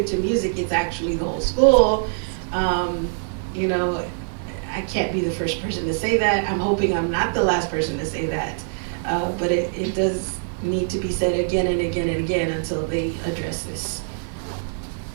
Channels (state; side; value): silent; left; digital silence